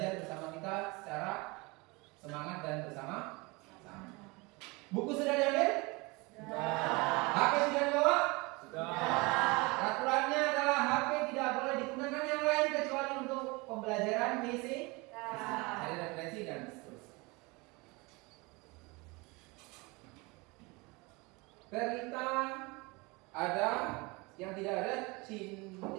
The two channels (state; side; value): quieter; left; 25.9 dB